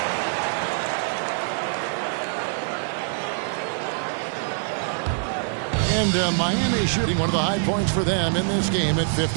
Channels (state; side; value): silent; left; digital silence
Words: And Miami shooting one of the high points for them in this game at